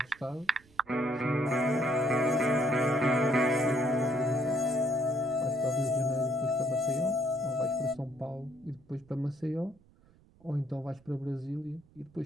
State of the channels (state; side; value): noise; right; rumble, 28 dB below the sound